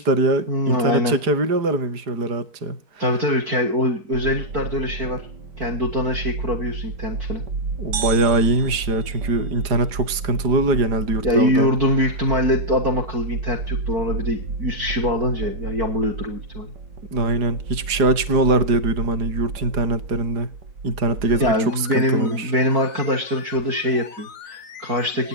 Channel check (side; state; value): left; late; 4.9 ms